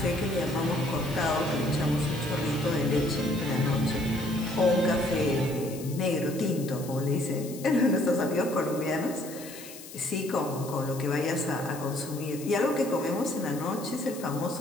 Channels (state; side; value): noise; left; hiss, 15 dB below the sound